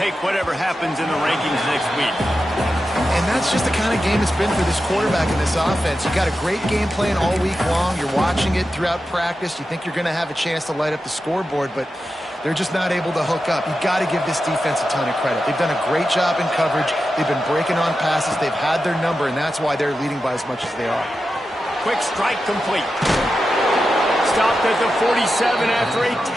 whatever happens in the rankings next week. And that's just the kind of game it's been for this quarterback in this offense. You got a great game plan all week long. You're watching it throughout practice. You think you're going to have a chance to light up the scoreboard, but they're just not able to hook up. You got to give this defense a ton of credit. They've done a great job in coverage. They've been breaking on passes. They've had their number, and that's why they're leading by as much as they are. Quick strike complete. Stopped at the 47 after a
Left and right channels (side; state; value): both; normal; correlation 0.91